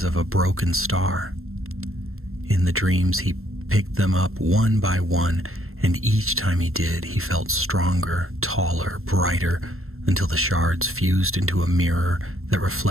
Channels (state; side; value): late; left; 0.62 ms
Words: of a broken star. In the dreams he picked them up one by one, and each time he did, he felt stronger, taller, brighter, until the shards fused into a mirror that